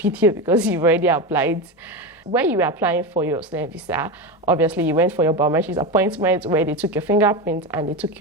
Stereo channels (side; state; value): both; normal; correlation 0.18